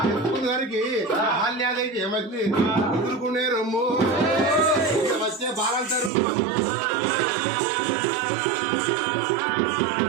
ఎత్తుకున్న దానికి బాల్యాదైతే ఏమైంది ఎదుర్కొనే రమ్ము వచ్చే బాలంటారు.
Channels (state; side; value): drops out; left; at 6.1 s